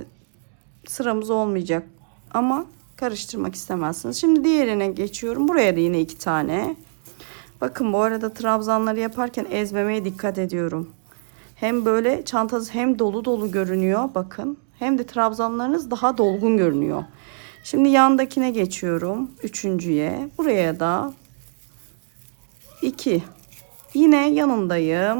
sıramız olmayacak ama karıştırmak istemezsiniz. Şimdi diğerine geçiyorum. Buraya da yine 2 tane. Bakın bu arada trabzanları yaparken ezmemeye dikkat ediyorum. Hem böyle çantanız hem dolu dolu görünüyor bakın. Hem de trabzanlarınız daha dolgun görünüyor. Şimdi yandakine geçiyorum. Üçüncüye. Buraya da 2. Yine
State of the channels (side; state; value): left; silent; digital silence